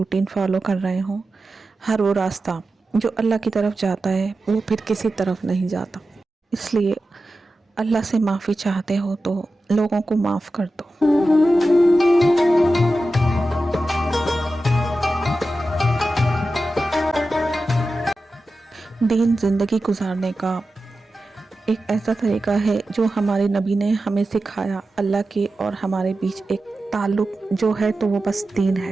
फॉलो कर रहे हों, हर वो रास्ता जो अल्लाह की तरफ जाता है वो फिर किसी तरफ नहीं जाता। इसलिए अल्लाह से माफ़ी चाहते हो तो लोगों को माफ़ कर दो। दीन ज़िंदगी गुजारने का एक ऐसा तरीका है जो हमारे नबी ने हमें सिखाया। अल्लाह के और हमारे बीच एक ताल्लुक़ जो है तो वो बस दीन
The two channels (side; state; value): both; normal; correlation 0.93